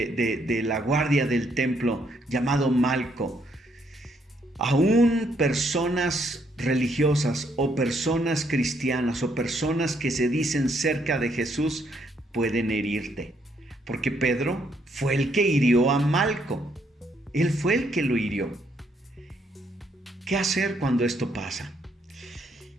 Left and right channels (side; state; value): both; normal; correlation 0.72